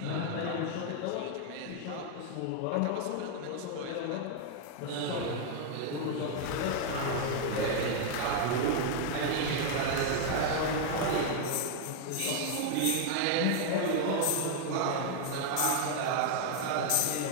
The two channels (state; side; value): different; both; correlation 0.00